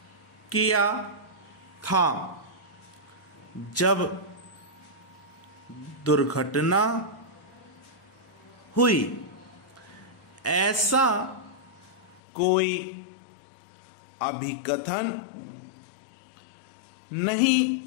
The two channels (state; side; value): drops out; right; at 12.2 s